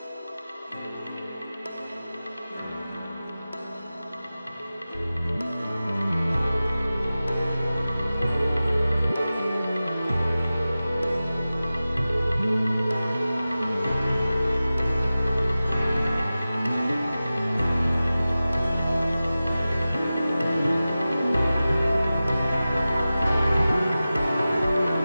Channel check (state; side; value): inverted; both; correlation -0.95